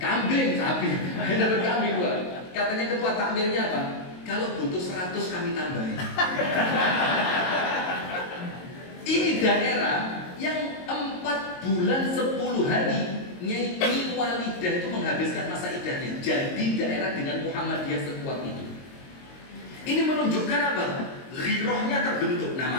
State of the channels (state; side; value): late; right; 22 ms